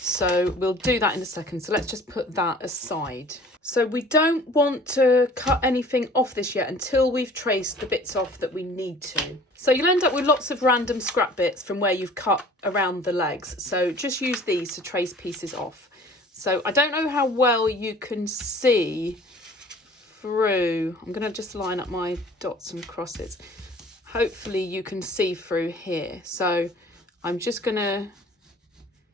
we'll do that in a second. So let's just put that aside. So we don't want to cut anything off this yet until we've traced the bits off that we need to. So you'll end up with lots of random scrap bits from where you've cut around the legs. So just use these to trace pieces off. So I don't know how well you can see through. I'm going to just line up my dots and crosses. Hopefully you can see through here. So I'm just going to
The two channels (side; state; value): both; normal; correlation 0.49